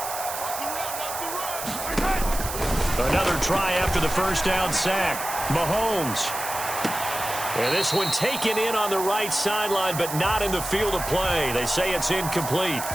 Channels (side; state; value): right; noise; hiss, 7 dB below the sound